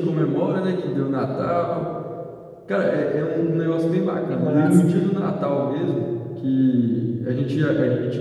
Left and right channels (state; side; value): identical; both; correlation 1.00